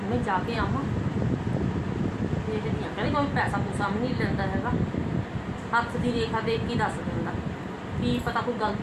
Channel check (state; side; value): identical; both; correlation 1.00